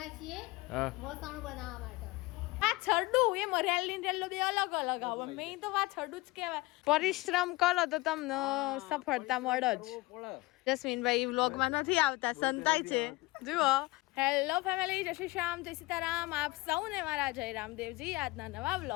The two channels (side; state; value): right; quieter; 21.8 dB